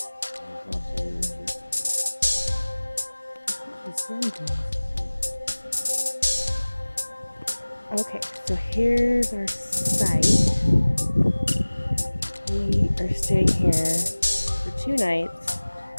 Okay, so here's our site. We are staying here for 2 nights.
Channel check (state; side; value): inverted; both; correlation -1.00